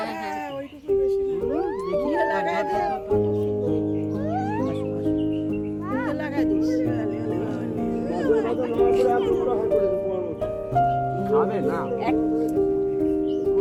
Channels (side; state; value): both; identical; correlation 1.00